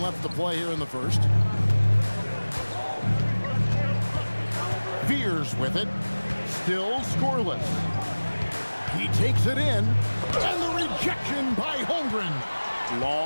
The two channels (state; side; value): inverted; both; correlation -1.00